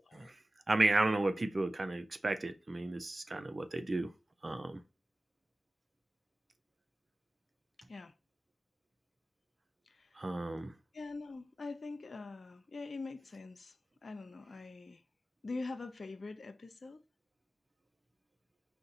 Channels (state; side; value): normal; both; correlation 0.96